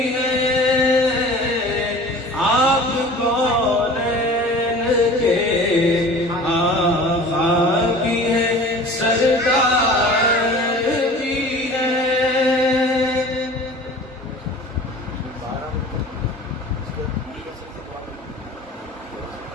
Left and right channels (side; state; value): both; normal; correlation 0.42